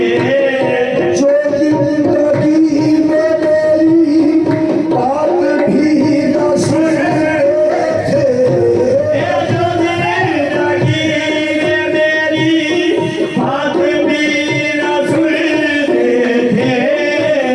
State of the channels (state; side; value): identical; both; correlation 1.00